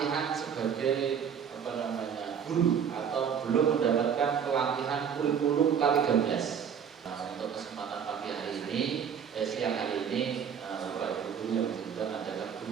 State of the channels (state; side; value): quieter; left; 7.7 dB